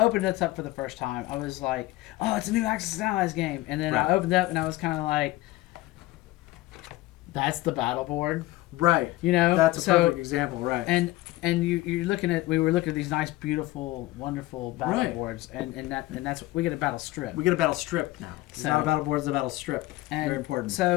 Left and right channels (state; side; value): quieter; right; 18.3 dB